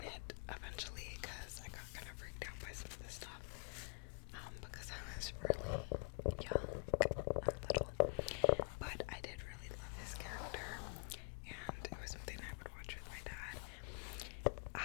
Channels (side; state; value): right; quieter; 38.6 dB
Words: it eventually because I got kind of freaked out by some of the stuff. Because I was really young and little. But I did really love his character, and it was something I would watch with my dad.